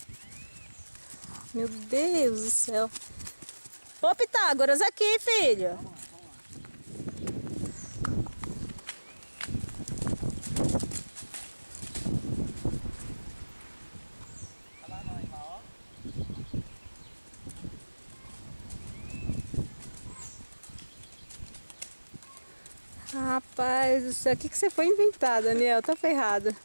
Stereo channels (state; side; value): inverted; both; correlation -1.00